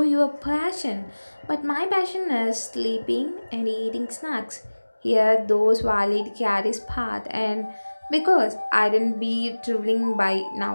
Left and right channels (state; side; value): inverted; both; correlation -1.00